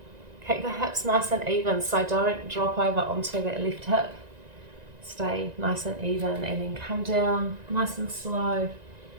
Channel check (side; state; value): left; late; 1.9 ms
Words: Keep the hips nice and even, so don't drop over onto that left hip. Stay nice and even, and then come down nice and slow.